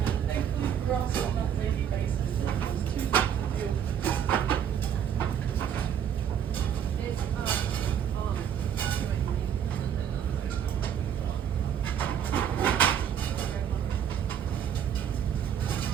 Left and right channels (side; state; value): left; quieter; 8.8 dB